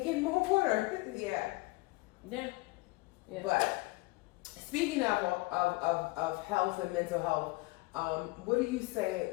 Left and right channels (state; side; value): quieter; right; 23.2 dB